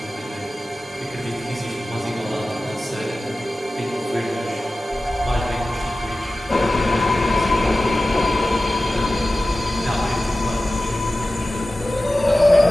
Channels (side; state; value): both; normal; correlation 0.95